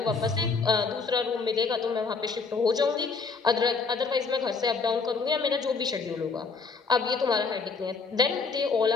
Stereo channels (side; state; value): right; quieter; 4.7 dB